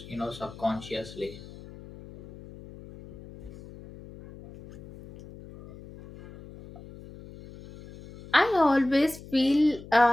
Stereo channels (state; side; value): noise; left; hum, 18 dB below the sound